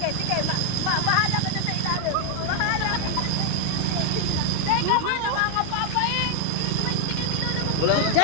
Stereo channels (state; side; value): different; both; correlation 0.00